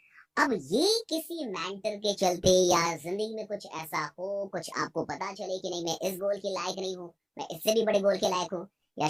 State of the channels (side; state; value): both; identical; correlation 1.00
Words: अब ये किसी मेंटर के चलते या जिंदगी में कुछ ऐसा हो, कुछ आपको पता चले कि नहीं मैं इस गोल के लायक नहीं हूँ, मैं इससे भी बड़े गोल के लायक हूँ, या